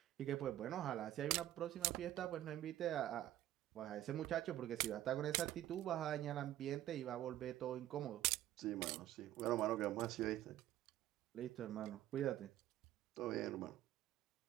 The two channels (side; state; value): left; quieter; 13.4 dB